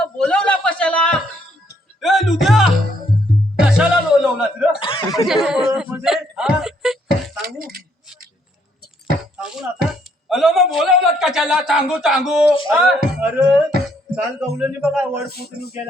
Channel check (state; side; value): normal; both; correlation 0.69